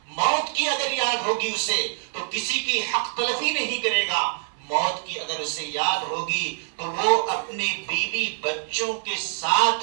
موت کی اگر یاد ہوگی اسے تو کسی کی حق تلفی نہیں کرے گا، موت کی اگر اسے یاد ہوگی تو وہ اپنے بیوی بچوں کے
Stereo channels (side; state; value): left; silent; digital silence